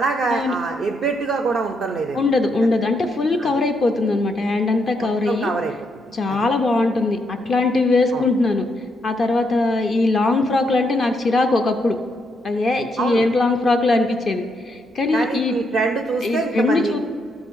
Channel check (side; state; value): both; normal; correlation 0.77